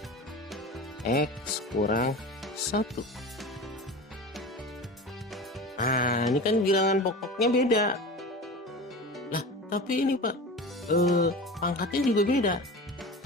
X kurang 1. Nah, ini kan bilangan pokoknya beda. Lah, tapi ini Pak, pangkatnya juga beda.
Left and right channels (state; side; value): normal; both; correlation 0.32